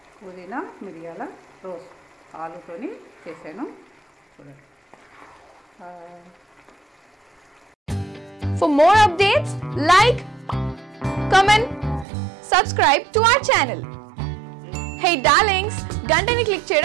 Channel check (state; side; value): drops out; left; at 12.1 s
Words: పుదీనా మిరియాల రోస్ట్ ఆలుతోని చేశాను చూడండి. For more updates, like, comment, subscribe to our channel. Hey darlings, గంటని click